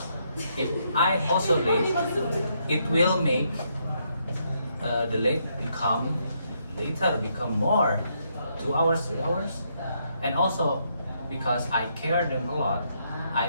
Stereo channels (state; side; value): inverted; both; correlation -0.75